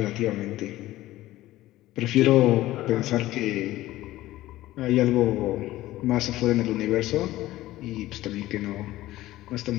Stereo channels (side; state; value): right; quieter; 16.0 dB